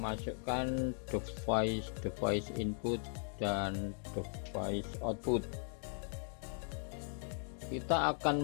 device input dan device output. Kita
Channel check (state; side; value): silent; right; 52 dB below the other